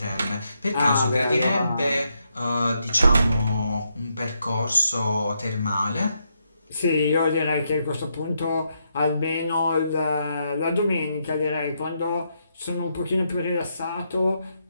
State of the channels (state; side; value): inverted; both; correlation -0.80